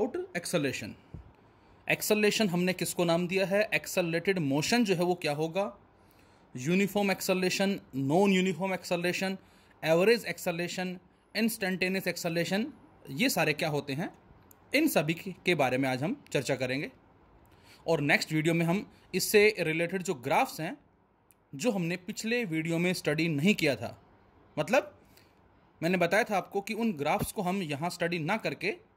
एक्सेलरेशन। एक्सेलरेशन हमने किसको नाम दिया है? एक्सेलरेटेड मोशन जो है वो क्या होगा? Uniform acceleration, non uniform acceleration, average acceleration, instantaneous acceleration, ये सारे क्या होते हैं, इन सभी के बारे में आज हम चर्चा करेंगे। और नेक्स्ट वीडियो में हम इससे रिलेटेड जो ग्राफ्स हैं, जो हमने पिछले वीडियो में स्टडी नहीं किया था, मतलब मैंने बताया था आपको कि उन ग्राफ्स को हम यहाँ स्टडी ना करके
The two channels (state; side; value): identical; both; correlation 1.00